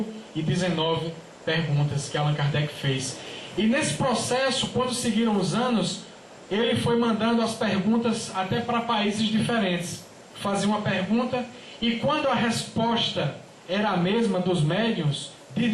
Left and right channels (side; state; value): both; identical; correlation 1.00